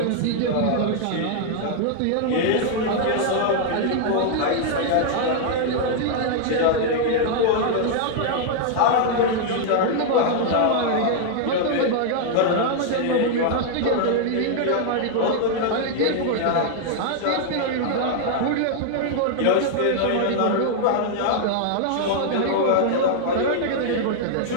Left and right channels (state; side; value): different; both; correlation 0.00